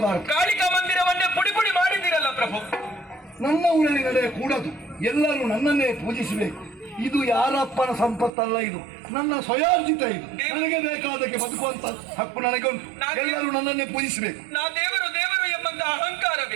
ಕಾಳಿಕಾ ಮಂದಿರವನ್ನೇ ಪುಡಿ ಪುಡಿ ಮಾಡಿದ್ದೀರಲ್ಲ ಪ್ರಭು. ನನ್ನ ಊರಲ್ಲಿ ನಡೆಯ ಕೂಡದು. ಎಲ್ಲರೂ ನನ್ನನ್ನೇ ಪೂಜಿಸಬೇಕು. ಇದು ಯಾರಪ್ಪನ ಸಂಪತ್ತಲ್ಲ, ಇದು ನನ್ನ ಸ್ವಯಾರ್ಜಿತ. ಇದು ನನಗೆ ಬೇಕಾದಕ್ಕೆ ಬದುಕುವಂತ ಹಕ್ಕು ನನಗೆ ಉಂಟು. ಎಲ್ಲರೂ ನನ್ನನ್ನೇ ಪೂಜಿಸಬೇಕು. ನಾ ದೇವರು ದೇವರು ಎಂಬಂತ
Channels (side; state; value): left; drops out; at 8.3 s